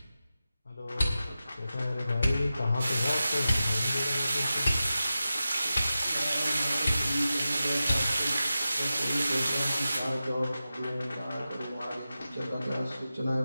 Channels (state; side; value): inverted; both; correlation -0.93